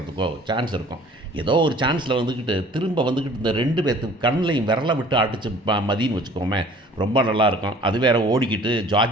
சான்ஸ் இருக்கும். ஏதோ ஒரு சான்ஸில் வந்துக்கிட்டு திரும்ப வந்துக்கிட்டு இந்த 2 பேர்த்து கண்ணிலையும் விரலை விட்டு அடிச்சு மதின்னு வச்சுக்கோமே, ரொம்ப நல்லாயிருக்கும். அது வேறு ஓடிக்கிட்டு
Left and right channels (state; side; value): normal; both; correlation 0.50